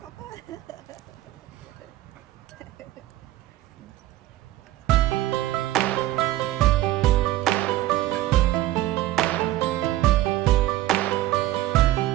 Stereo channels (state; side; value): quieter; left; 15.1 dB